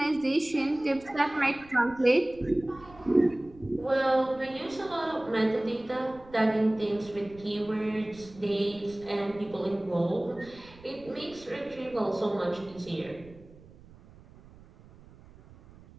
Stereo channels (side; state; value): right; noise; rumble, 22 dB below the sound